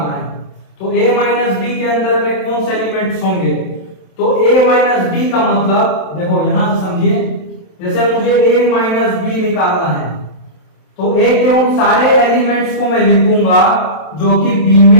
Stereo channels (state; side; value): late; right; 27 ms